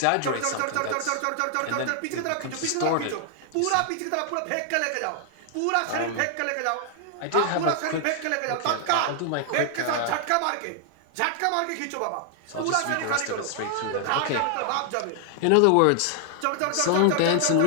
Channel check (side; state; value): both; different; correlation 0.00